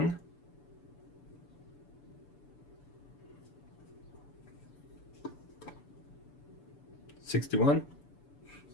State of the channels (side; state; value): right; late; 6.9 ms